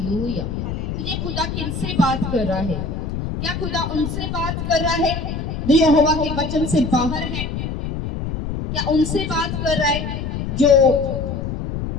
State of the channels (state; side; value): noise; left; rumble, 4 dB below the sound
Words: तुझे खुदा किनसे बात कर रहा है? क्या खुदा उनसे बात कर रहा है जो यहोवा के वचन से बाहर है? क्या उनसे बात कर रहा है जो